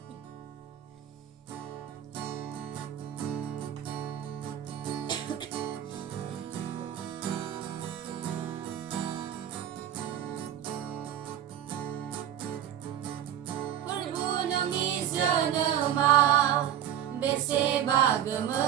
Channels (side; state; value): left; quieter; 10.6 dB